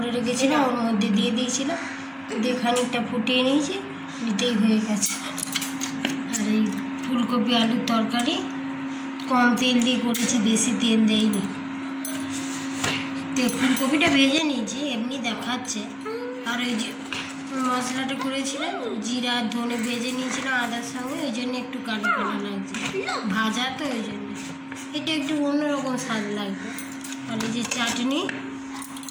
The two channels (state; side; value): identical; both; correlation 1.00